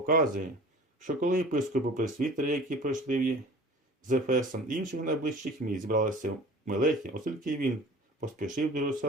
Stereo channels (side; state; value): both; normal; correlation 0.43